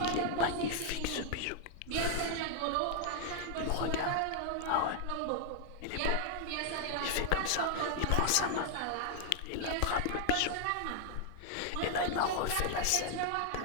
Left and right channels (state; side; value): different; both; correlation 0.00